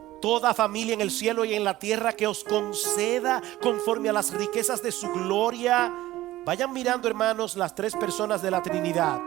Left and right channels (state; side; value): quieter; left; 16.1 dB